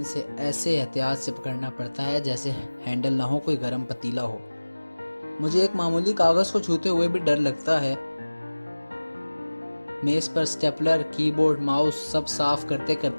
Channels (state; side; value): inverted; both; correlation -1.00